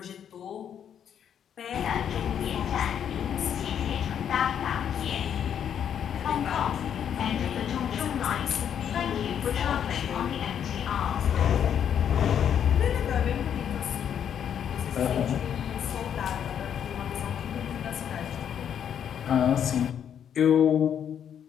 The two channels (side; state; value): right; quieter; 8.8 dB